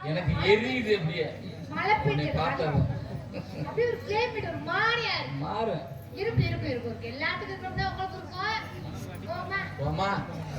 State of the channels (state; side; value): identical; both; correlation 1.00